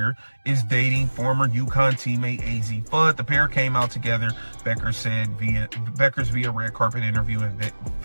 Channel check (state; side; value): inverted; both; correlation -1.00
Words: is dating former UConn teammate AZ Fudd. The pair came out together, Beckers via red carpet interview, and